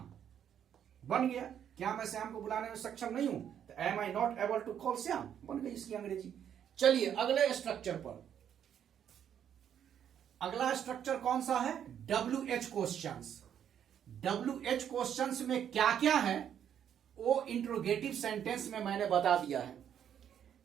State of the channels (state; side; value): quieter; left; 9.2 dB